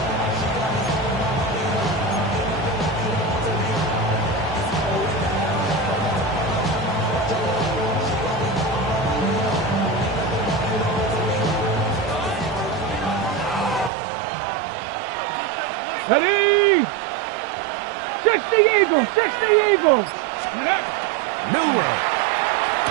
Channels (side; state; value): left; drops out; at 13.9 s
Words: Ready? 60 Eagles, 60 Eagles. Milrow.